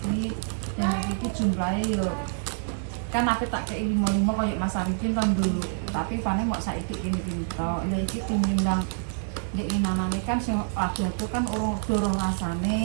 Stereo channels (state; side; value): silent; left; digital silence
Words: dan iki jumlahe yo kan aku tak kei 5 koyo Mas Arifin tahun dulu tapi paling kok saiki ini tok lha iki timbang nek inanane kan sing ada tuh kan dorong